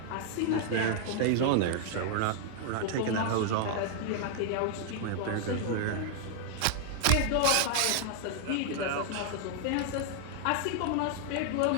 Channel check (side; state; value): both; different; correlation 0.00